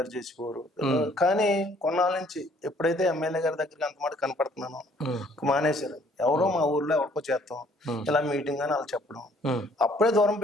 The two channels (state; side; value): normal; both; correlation 0.61